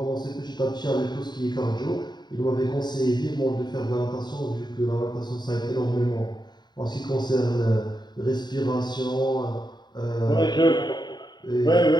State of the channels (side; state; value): right; late; 0.21 ms